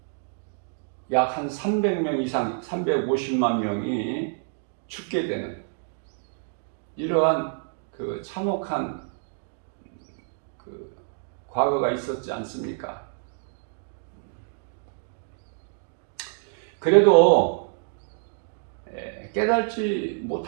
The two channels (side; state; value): left; silent; digital silence